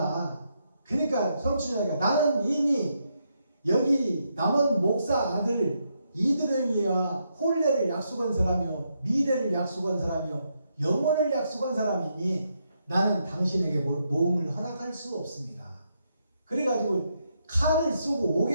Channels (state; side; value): inverted; both; correlation -0.79